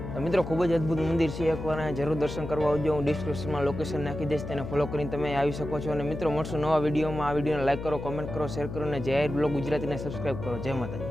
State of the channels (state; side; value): noise; left; hum, 8 dB below the sound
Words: તો મિત્રો ખૂબ જ અદ્ભુત મંદિર છે, એકવાર અહીંયા જરૂર દર્શન કરવા આવજો। હું ડિસ્ક્રિપ્શનમાં લોકેશન નાખી દઈશ, તેને ફોલો કરીને તમે આવી શકો છો। અને મિત્રો મળશું નવા વિડીયોમાં। આ વિડીયોને લાઈક કરો, કોમેન્ટ કરો, શેર કરો અને જાહેર બ્લોગ ગુજરાતીને સબસ્ક્રાઈબ કરો। જય